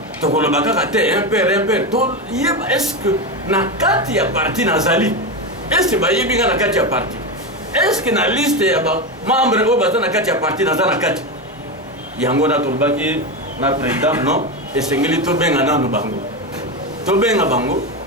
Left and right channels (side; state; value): both; normal; correlation 0.15